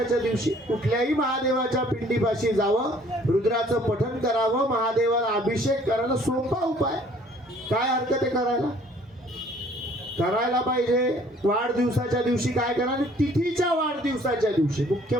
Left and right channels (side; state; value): both; normal; correlation 0.57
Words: दिवशी कुठल्याही महादेवाच्या पिंडीपाशी जावं, रुद्राचं पठण करावं, महादेवाला अभिषेक करायला सोपा उपाय. काय हरकत आहे करायला, करायला पाहिजे. वाढदिवसाच्या दिवशी काय करा, तिथीच्या वाढदिवसाच्या दिवशी. मुख्य